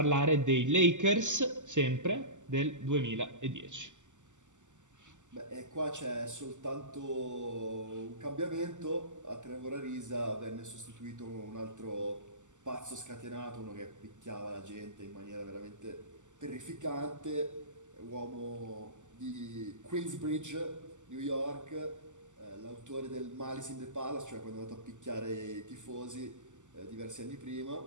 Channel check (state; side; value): late; left; 0.85 ms